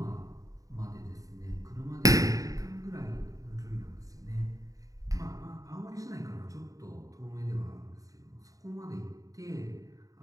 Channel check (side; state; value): left; late; 0.16 ms